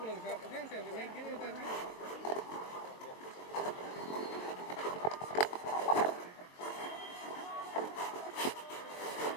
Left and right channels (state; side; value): late; right; 23 ms